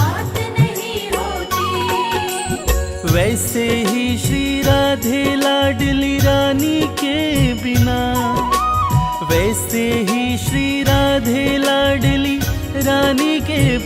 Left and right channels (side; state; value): both; identical; correlation 1.00